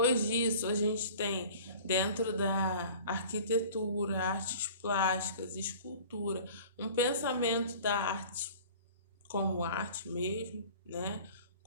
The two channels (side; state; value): both; inverted; correlation -0.45